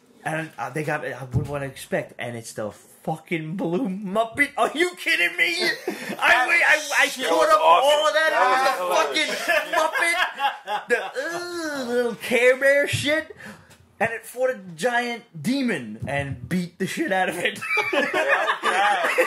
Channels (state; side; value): identical; both; correlation 1.00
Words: And they got I wouldn't want to expect, and it's the fuck blue Muppet. Are you kidding me? I caught up awesome. all of that. That It was the fucking Muppet, the little Care Bear shit. And it fought a giant demon and beat the shit out of it.